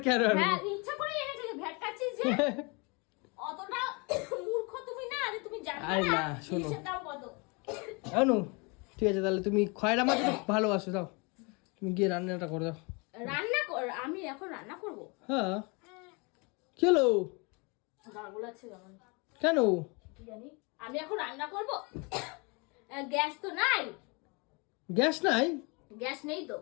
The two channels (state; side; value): quieter; right; 30.3 dB